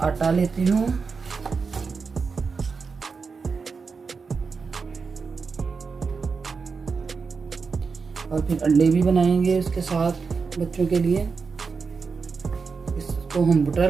लेती हूँ, और फिर अंडे भी बनाएंगे उसके साथ बच्चों के लिए। इसको हम बटर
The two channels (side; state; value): left; quieter; 5.0 dB